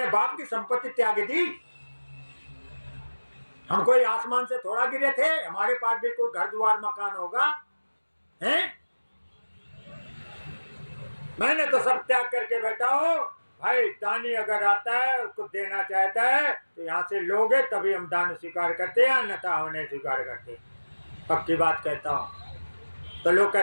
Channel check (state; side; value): inverted; both; correlation -1.00